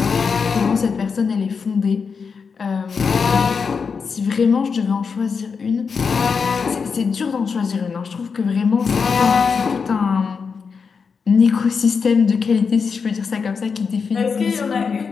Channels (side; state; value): right; quieter; 5.6 dB